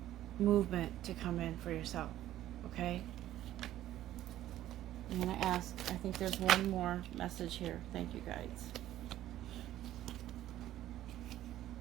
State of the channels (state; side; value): quieter; left; 13.4 dB